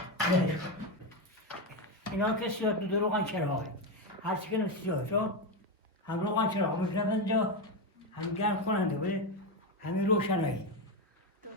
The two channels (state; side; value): normal; both; correlation 0.11